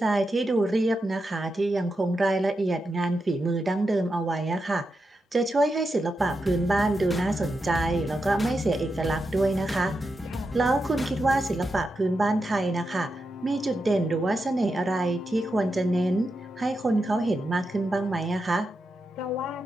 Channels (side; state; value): both; normal; correlation 0.87